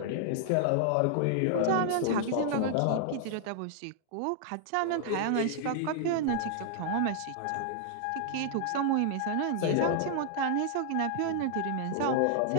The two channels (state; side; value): different; both; correlation -0.01